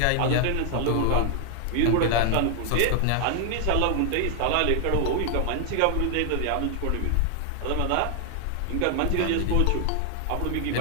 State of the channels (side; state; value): both; different; correlation 0.00